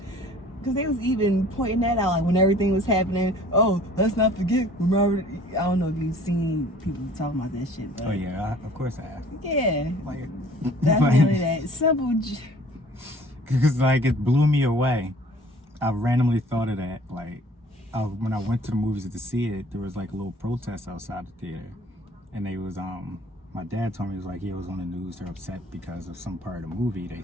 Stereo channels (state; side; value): normal; both; correlation 0.51